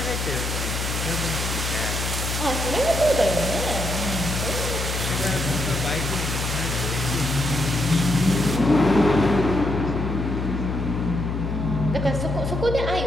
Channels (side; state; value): left; noise; hum, 3 dB below the sound